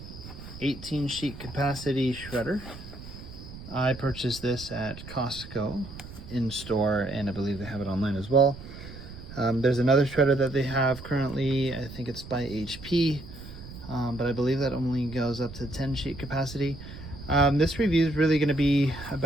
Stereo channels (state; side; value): noise; right; rumble, 14 dB below the sound